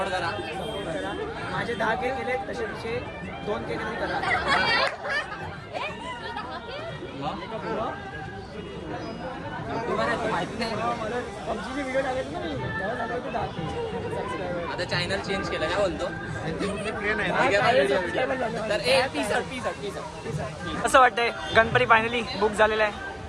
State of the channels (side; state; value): both; identical; correlation 1.00